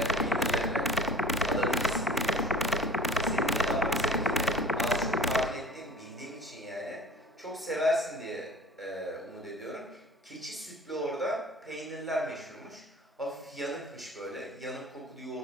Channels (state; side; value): normal; both; correlation 0.42